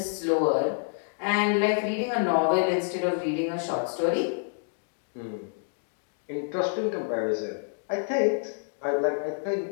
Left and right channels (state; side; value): silent; right; digital silence